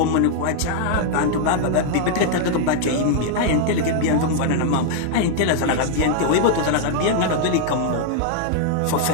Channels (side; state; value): both; different; correlation -0.01